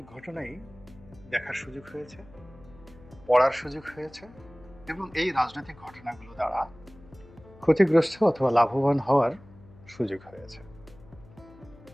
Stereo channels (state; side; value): noise; left; hum, 23 dB below the sound